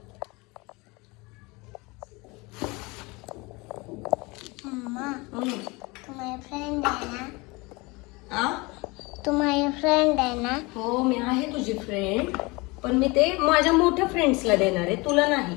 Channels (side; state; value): right; quieter; 25.2 dB